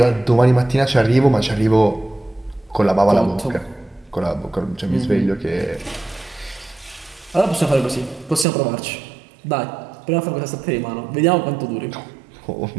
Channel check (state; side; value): drops out; left; at 8.5 s